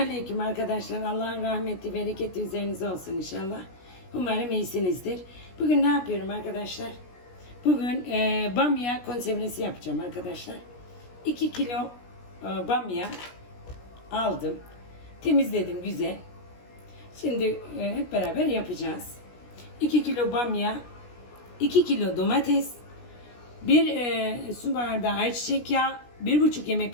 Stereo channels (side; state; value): right; late; 17 ms